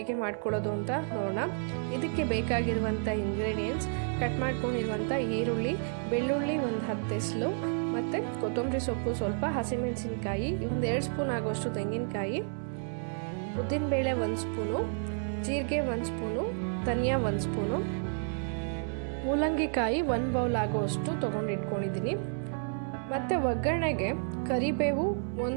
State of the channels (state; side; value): silent; left; 57 dB below the other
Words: ಮಾಡ್ಕೊಳ್ಳೋದು ಅಂತ ನೋಡೋಣ. ಇದಕ್ಕೆ ಬೇಕಾಗಿರುವಂಥ ಇಂಗ್ರೀಡಿಯೆಂಟ್ಸ್: ಕಟ್ ಮಾಡ್ಕೊಂಡಿರುವಂಥ ಈರುಳ್ಳಿ, ಬೆಳ್ಳುಳ್ಳಿ ಒಂದು 10 ಎಸಳು, ಮತ್ತು ಕೊತ್ತಂಬರಿ ಸೊಪ್ಪು ಸ್ವಲ್ಪ, ಹಸಿಮೆಣಸಿನ್ಕಾಯಿ, ಒಂದು 2 ಸ್ಪೂನ್ ಆಗೋಷ್ಟು ತೆಂಗಿನಕಾಯಿ, ಉದ್ದಿನಬೇಳೆ 1 ಸ್ಪೂನು, ಜೀರಿಗೆ 1 ಸ್ಪೂನು, ಧನಿಯಾ 1 ಸ್ಪೂನು, ಮೂಲಂಗಿಕಾಯಿ 1 ಬೌಲ್ ಆಗೋಷ್ಟು ತೊಗೊಂಡಿಟ್ಕೊಂಡಿದ್ದೀನಿ. ಮತ್ತು ಒಗ್ಗರಣೆಗೆ ಕರಿಬೇವು,